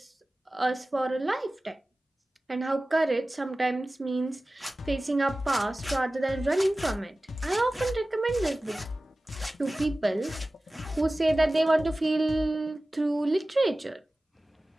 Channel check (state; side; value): normal; both; correlation 0.97